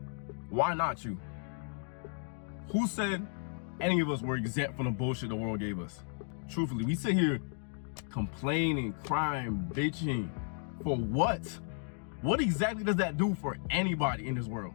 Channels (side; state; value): right; silent; 55 dB below the other